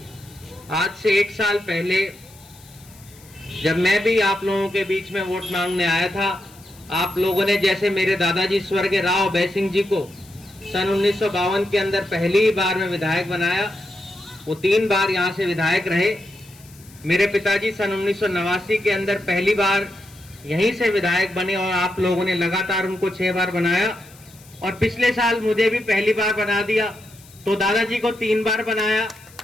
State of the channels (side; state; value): left; noise; hiss, 24 dB below the sound